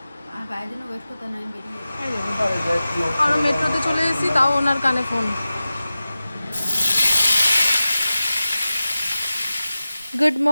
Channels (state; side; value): inverted; both; correlation -0.95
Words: আর বাইরের জন্য ওয়েট করতে না, আমি বেরিয়ে গেছি। আমরা মেট্রোতে চলে এসেছি, তাও ওনার কানে ফোন। গুড